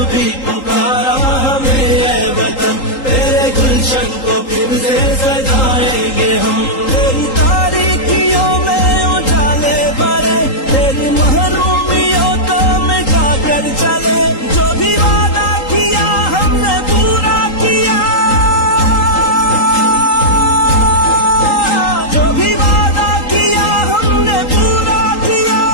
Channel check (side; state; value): right; late; 3.8 ms